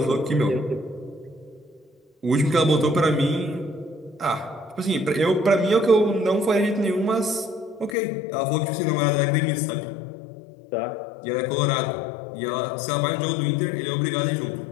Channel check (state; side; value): drops out; right; at 8.0 s